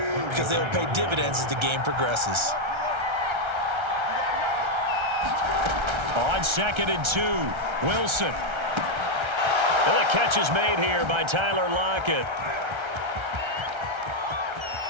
they will pay dividends as the game progresses. On 2nd and 2, Wilson. And the catch is made here by Tyler Lockett.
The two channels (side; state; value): left; late; 1.3 ms